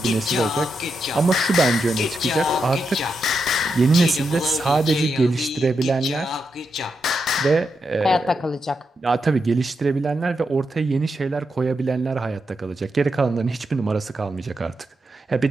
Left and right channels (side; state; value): both; normal; correlation 0.85